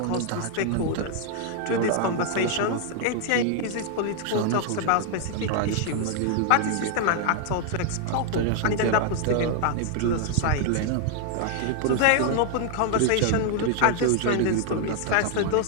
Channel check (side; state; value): both; different; correlation 0.00